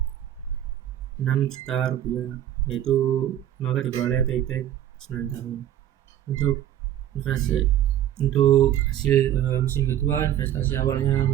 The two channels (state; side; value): quieter; left; 11.5 dB